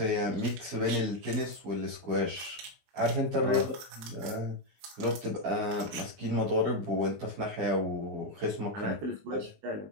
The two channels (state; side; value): late; left; 19 ms